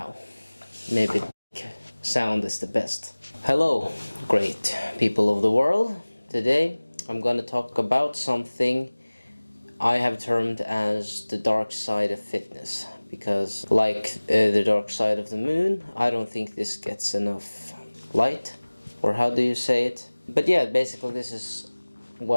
Maybe sound is the best. Hello, great people of the world. Today I'm gonna talk about something I have termed as the dark side of fitness, because like the dark side of the moon, I don't think this gets enough light, or how do you say it? But yeah, basically this is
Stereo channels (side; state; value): both; inverted; correlation -1.00